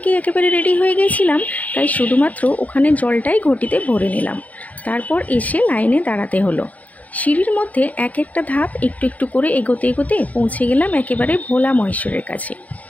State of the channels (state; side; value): late; right; 0.072 ms